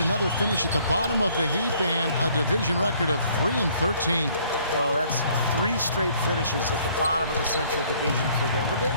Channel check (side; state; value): both; inverted; correlation -0.61